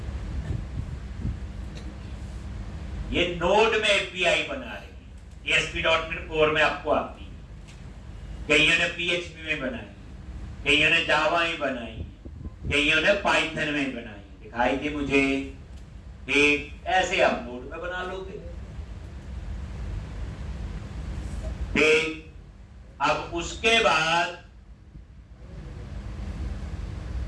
ये नोड में एपीआई बना रही है, ASP.NET Core में आपको आती है, कईयों ने PHP में बनाई, कईयों ने जावा में बनाई, कईयों ने पाइथन में बनाई, दिखाई थी मुझे, ठीक। ऐसे आप नोड में बना लोगे, ठीक। अब उसके बाद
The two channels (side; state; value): both; identical; correlation 1.00